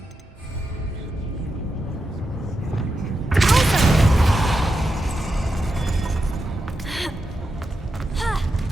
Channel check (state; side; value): normal; both; correlation 0.87